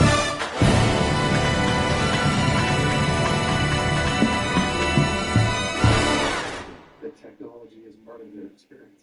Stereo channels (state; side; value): identical; both; correlation 1.00